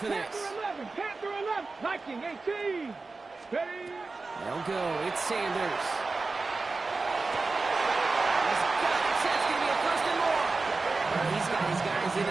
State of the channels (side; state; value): left; quieter; 3.8 dB